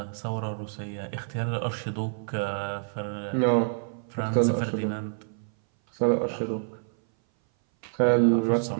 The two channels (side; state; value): left; silent; 58 dB below the other